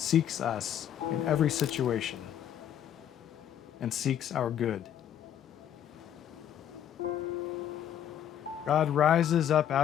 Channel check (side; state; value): right; quieter; 10.1 dB